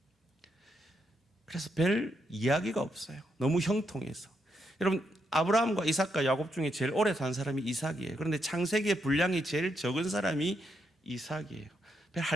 그래서 별 이야기가 없어요. 너무 형통해서. 여러분, 아브라함과 이삭과 야곱 중에 제일 오래 산 사람이 이삭이에요. 그런데 창세기의 분량이 제일 적은 사람이 이삭이에요. 별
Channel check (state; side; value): normal; both; correlation 0.80